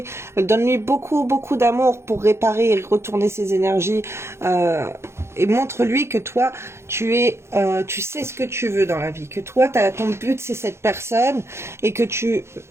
donne-lui beaucoup d'amour pour réparer et retourner ses énergies, et montre-lui que toi tu sais ce que tu veux dans la vie, que toi ton but c'est cette personne et que tu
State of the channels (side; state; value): left; late; 0.13 ms